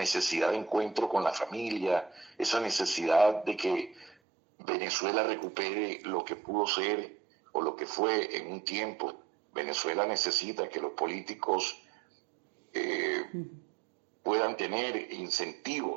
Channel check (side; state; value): left; drops out; at 4.2 s